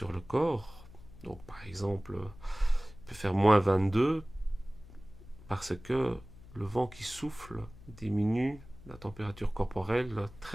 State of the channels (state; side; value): noise; left; hum, 19 dB below the sound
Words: le corps. Donc par exemple, il peut faire moins 22 parce que le vent qui souffle diminue la température corporelle